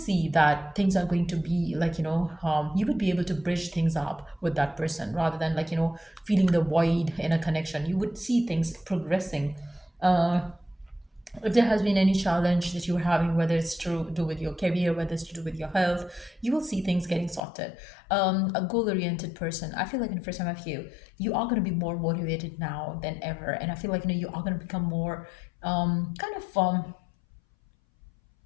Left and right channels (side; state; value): right; drops out; at 17.4 s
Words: that things are going to be like you would be able to bridge things up with that person rather than like feeling the void in a connection. You would see things progressing. If there has been any challenge that you're having, whether it's to do with your career, whether it's to do with your health, you will see things getting sorted. A goal-oriented person, I feel like for some of you, you are going to be more motivated now than ever, and I feel like you are going to become more kind of